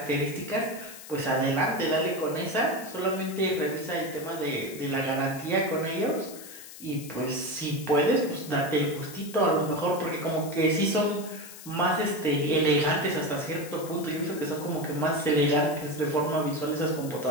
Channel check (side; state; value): left; noise; hiss, 15 dB below the sound